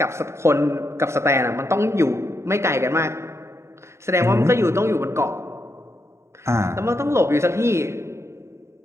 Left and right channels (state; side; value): late; left; 0.13 ms